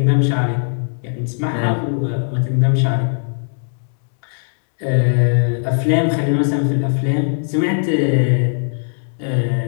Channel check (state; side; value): silent; right; 67 dB below the other